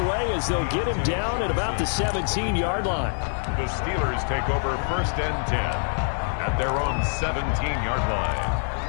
as they'll get him down at about the 17-yard line. The Steelers take over 1st and 10 at their own 17-yard line.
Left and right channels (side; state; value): right; silent; 57 dB below the other